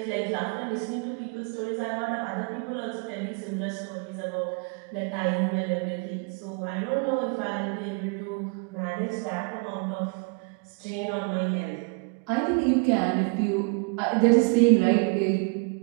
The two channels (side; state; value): left; quieter; 33.2 dB